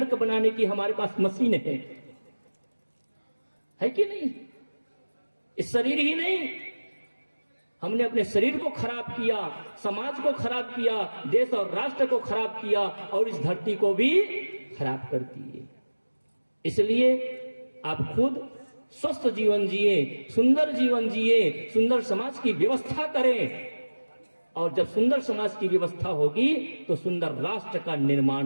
बनाने की हमारे पास मशीन है कि नहीं। इस शरीर ही नहीं, हमने अपने शरीर को खराब किया, समाज को खराब किया, देश और राष्ट्र को खराब किया और इस धरती को भी खराब कर दिए। इसलिए आप खुद स्वस्थ जीवन जिए, सुंदर जीवन जिए, सुंदर समाज की व्यवस्था करें, और जब सुंदर समाज की व्यवस्था होगी तो सुंदर राष्ट्र का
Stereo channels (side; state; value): both; inverted; correlation -1.00